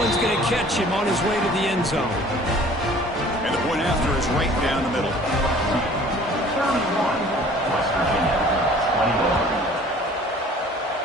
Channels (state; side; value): normal; both; correlation 0.50